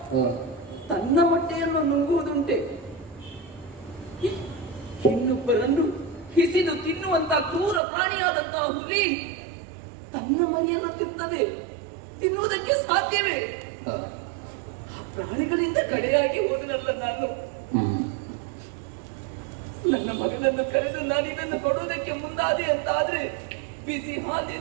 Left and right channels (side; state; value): left; drops out; at 7.8 s